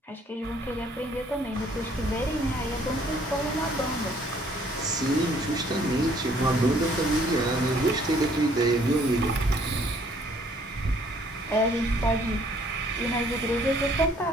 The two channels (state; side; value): normal; both; correlation 0.61